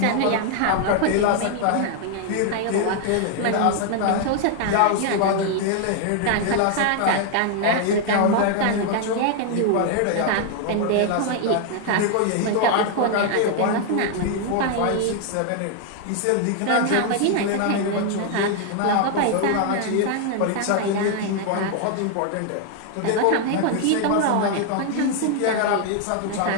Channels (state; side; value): different; both; correlation 0.00